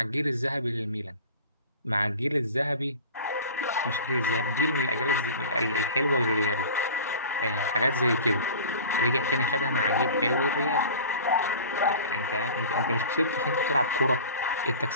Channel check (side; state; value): both; inverted; correlation -0.39